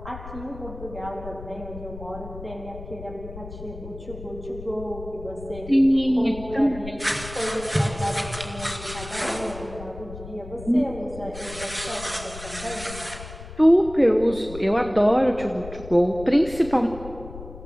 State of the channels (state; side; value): noise; left; rumble, 13 dB below the sound